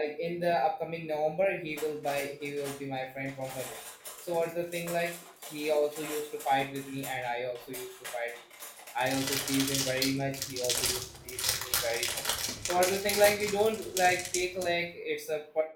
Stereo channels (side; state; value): both; identical; correlation 1.00